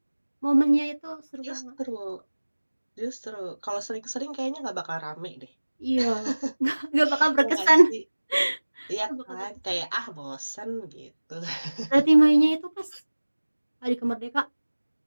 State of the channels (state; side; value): inverted; both; correlation -1.00